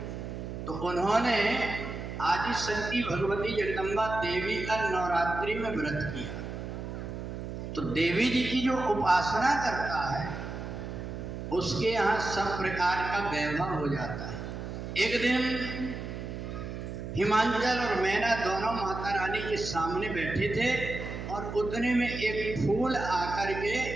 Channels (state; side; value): noise; right; hum, 7 dB below the sound